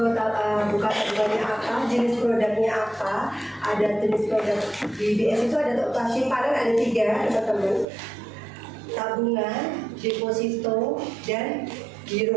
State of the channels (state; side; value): drops out; left; at 7.9 s